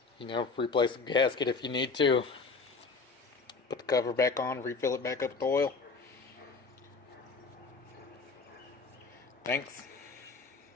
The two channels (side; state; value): right; quieter; 4.5 dB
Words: you know, replace the gasket if you need to. Put the cover back on, refill it back up with oil. Thanks